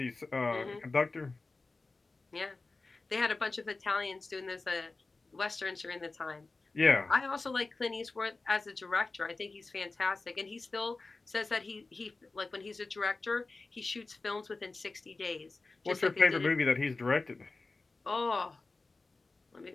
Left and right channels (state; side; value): quieter; right; 3.6 dB